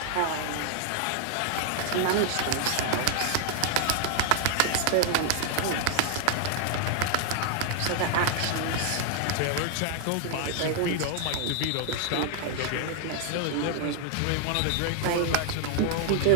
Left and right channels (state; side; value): different; both; correlation 0.00